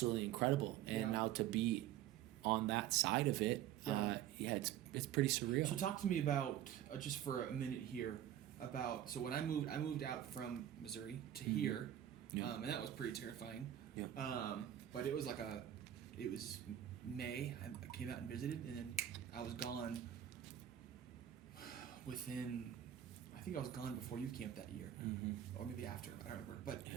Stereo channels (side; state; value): left; quieter; 11.3 dB